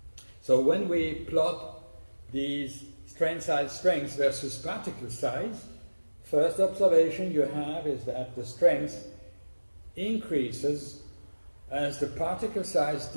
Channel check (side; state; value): both; inverted; correlation -1.00